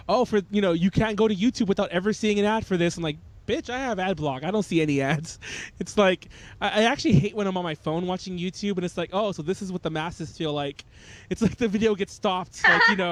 "Oh, you can't go to YouTube without ever seeing an ad for this." I'm like, "Bitch, I have AdBlock. I don't see any ads." It's like I actually hate when I'm on my phone watching YouTube, and it's like, "Oh, so this is what the masses feel like." It's like the video gets stopped, like I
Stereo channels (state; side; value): identical; both; correlation 1.00